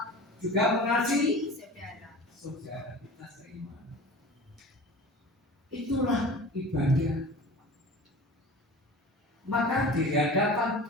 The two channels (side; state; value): both; normal; correlation 0.38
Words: juga mengasihi saudara kita seiman. Itulah ibadah. Maka di hadapan